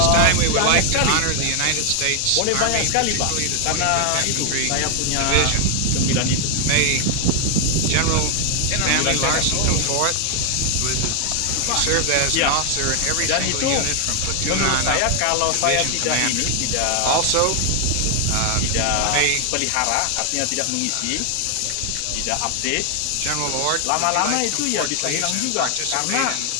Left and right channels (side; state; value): both; different; correlation 0.00